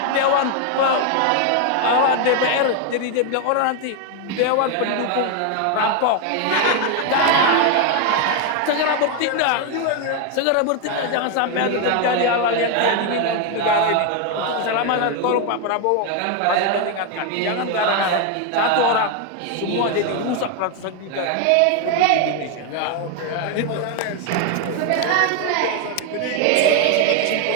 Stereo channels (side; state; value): both; different; correlation 0.01